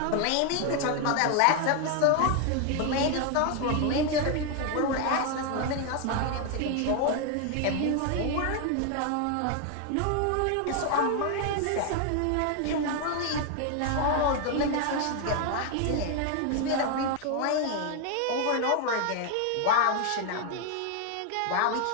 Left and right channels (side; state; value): both; different; correlation 0.01